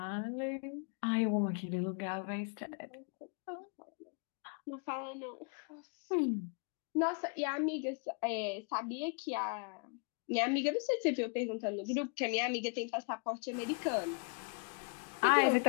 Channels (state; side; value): quieter; right; 38.9 dB